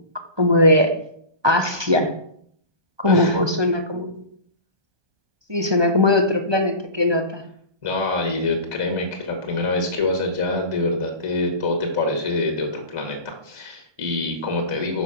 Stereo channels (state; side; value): late; left; 1.2 ms